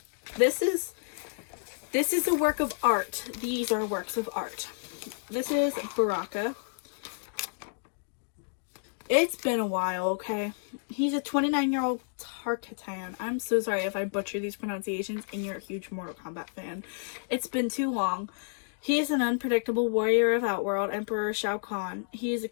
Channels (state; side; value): silent; right; digital silence